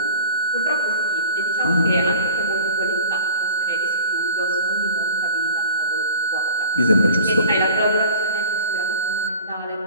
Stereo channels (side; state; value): both; inverted; correlation -0.41